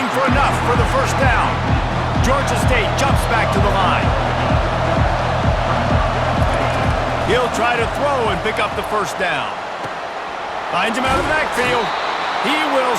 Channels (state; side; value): identical; both; correlation 1.00